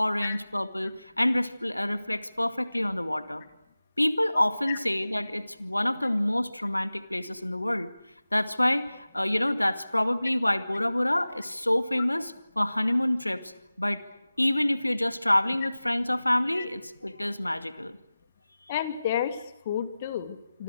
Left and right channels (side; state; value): both; inverted; correlation -0.97